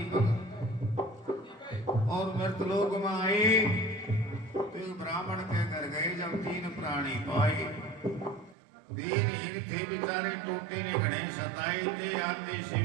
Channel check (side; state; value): left; drops out; at 8.6 s